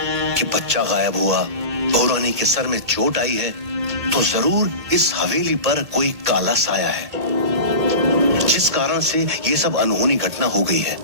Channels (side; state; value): left; late; 2.2 ms